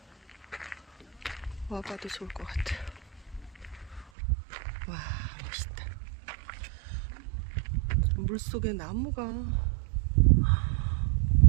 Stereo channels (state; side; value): drops out; left; at 4.1 s